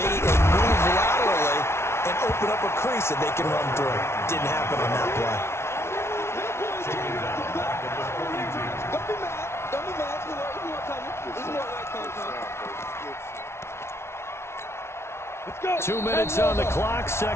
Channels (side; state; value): right; late; 0.13 ms